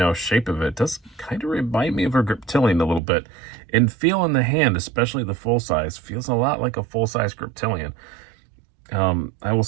shape of it does kind of remind me of a Griptilian a little bit. And feel in the hand, especially the full size, feels a lot like a full size Griptilian. I will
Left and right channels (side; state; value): left; drops out; at 3.0 s